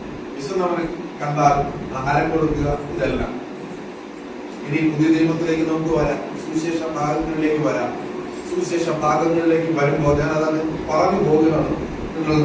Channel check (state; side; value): identical; both; correlation 1.00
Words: വിശന്നവനെ കണ്ടാൽ ആഹാരം കൊടുക്കുക. ഇതെല്ലാം ഇനി പുതിയ നിയമത്തിലേക്ക് നമുക്ക് വരാം, സുവിശേഷ ഭാഗങ്ങളിലേക്ക് വരാം. സുവിശേഷ ഭാഗങ്ങളിലേക്ക് വരുമ്പോൾ ഞാൻ അതങ്ങ് പറഞ്ഞു പോകുകയാണ്